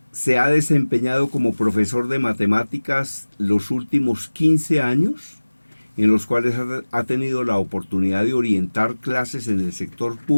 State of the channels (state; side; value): inverted; both; correlation -1.00